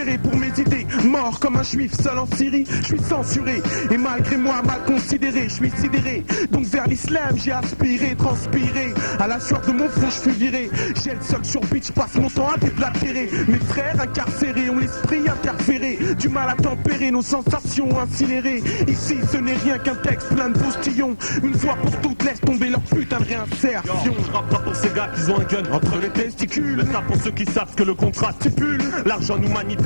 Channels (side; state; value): both; inverted; correlation -1.00